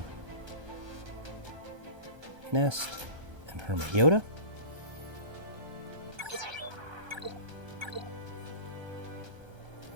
Nest and Hermit Yoda.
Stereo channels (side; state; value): left; late; 1.3 ms